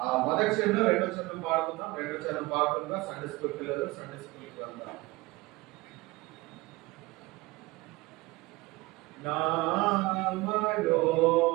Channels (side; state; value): left; quieter; 21.8 dB